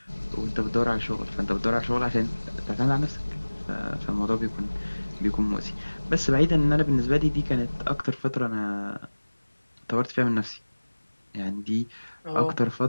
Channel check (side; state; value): both; inverted; correlation -1.00